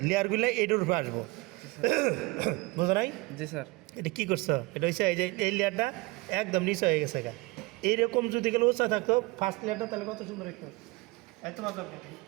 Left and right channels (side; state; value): left; quieter; 23.7 dB